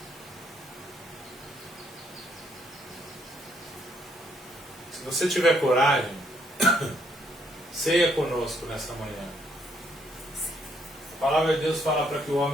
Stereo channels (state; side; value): normal; both; correlation 0.71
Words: Se você tiver coragem, ceia conosco nessa manhã. A palavra de Deus fala para que o